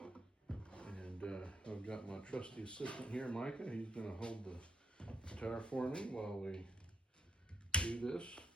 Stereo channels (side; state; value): both; normal; correlation 0.78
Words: And I've got my trusty assistant here, Micah. He's going to hold the guitar for me while we do this